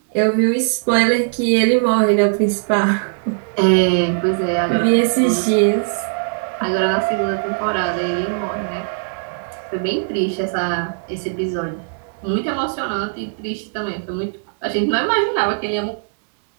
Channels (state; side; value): silent; left; digital silence